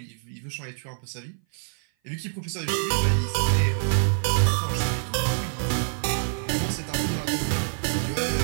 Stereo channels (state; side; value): silent; left; 57 dB below the other